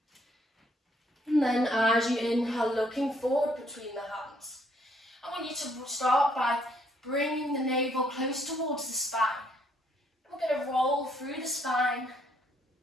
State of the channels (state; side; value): normal; both; correlation 0.68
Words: And then as you inhale, looking forward between the hands. I want you to start by bringing the navel close towards the spine. We're going to roll through the spine